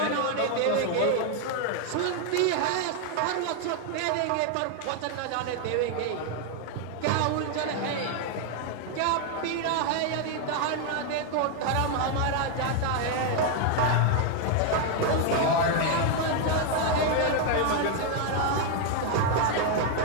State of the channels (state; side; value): different; both; correlation 0.00